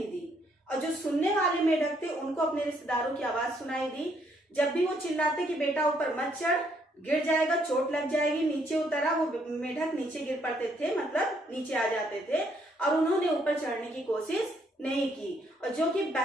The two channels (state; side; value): normal; both; correlation 0.70